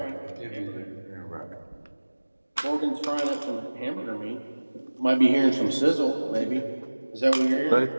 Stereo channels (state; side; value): inverted; both; correlation -1.00